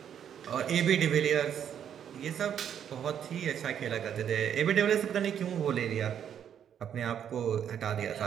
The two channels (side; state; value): left; quieter; 9.0 dB